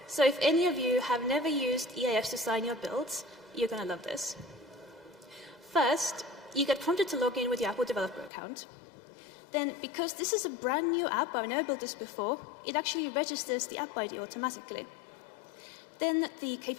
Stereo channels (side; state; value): right; drops out; at 8.3 s